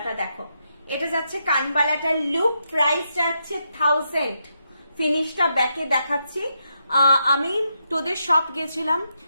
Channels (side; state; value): both; inverted; correlation -0.82